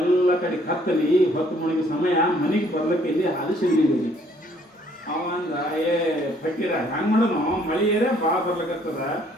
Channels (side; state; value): both; normal; correlation 0.63